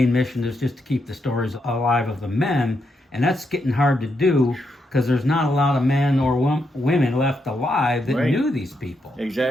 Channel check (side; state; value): both; normal; correlation 0.81